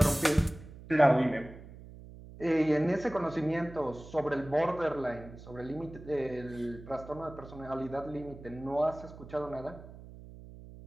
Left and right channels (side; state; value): right; noise; hum, 16 dB below the sound